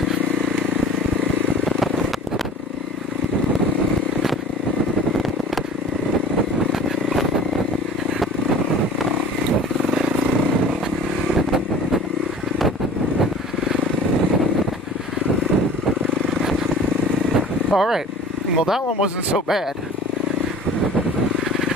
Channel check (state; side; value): normal; both; correlation 0.44